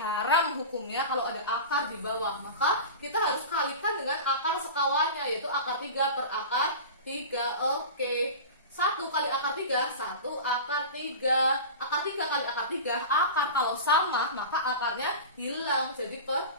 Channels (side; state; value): both; inverted; correlation -0.30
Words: hukumnya kalau ada akar di bawah. Maka kita harus kalikan dengan akar sekawannya, yaitu akar 3 per akar 3. Oke, 1 kali akar 3, 1 akar 3. Akar 3 kali akar 3, akar kalau sama maka akarnya hilang, jadi per